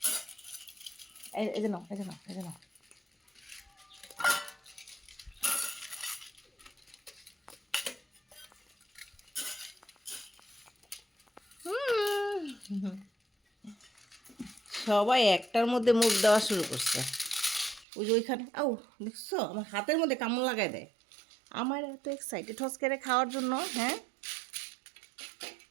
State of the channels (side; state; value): left; drops out; at 17.9 s